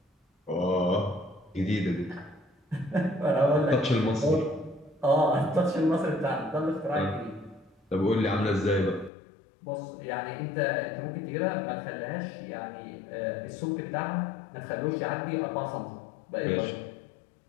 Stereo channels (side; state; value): right; drops out; at 9.1 s